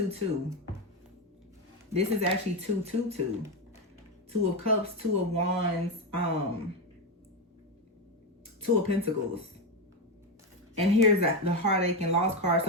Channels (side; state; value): both; normal; correlation 0.11